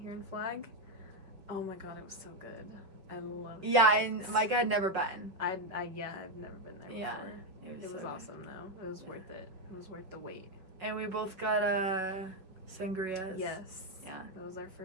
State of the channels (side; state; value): left; late; 5.4 ms